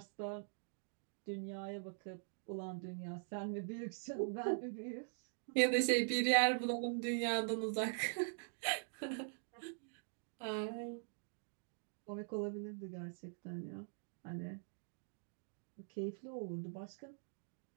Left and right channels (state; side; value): silent; left; digital silence